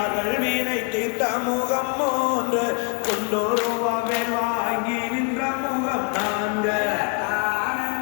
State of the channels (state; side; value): quieter; right; 34.8 dB